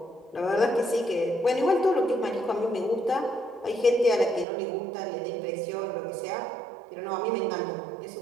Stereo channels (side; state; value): left; drops out; at 4.5 s